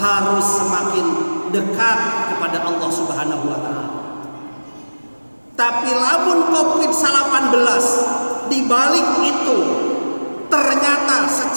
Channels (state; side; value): inverted; both; correlation -1.00